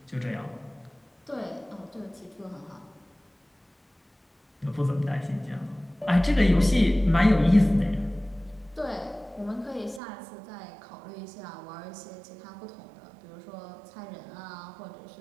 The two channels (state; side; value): drops out; left; at 10.0 s